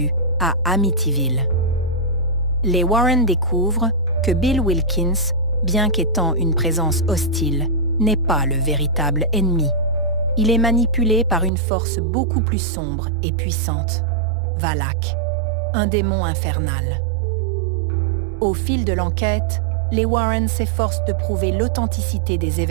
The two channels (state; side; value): drops out; left; at 11.5 s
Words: à Amityville. Les Warren découvrent que Bill Wilkins, bien qu'étant une présence hostile, n'est pas le véritable ennemi. Il est manipulé par une force beaucoup plus sombre et puissante, Valak, un démon infernal. Au fil de l'enquête, les Warren s'efforcent de prouver l'authenticité des